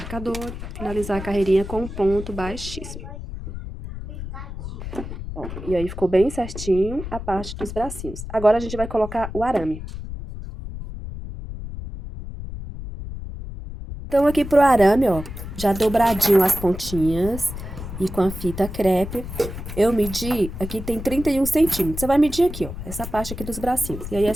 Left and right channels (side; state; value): left; noise; rumble, 9 dB below the sound